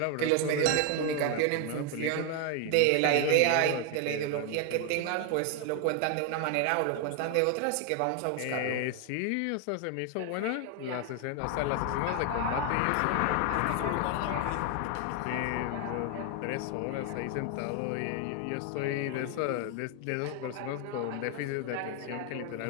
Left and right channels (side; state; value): both; different; correlation 0.01